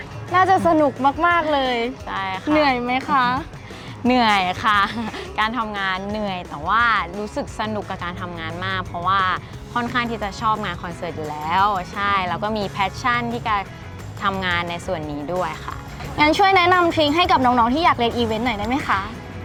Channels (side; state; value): both; identical; correlation 1.00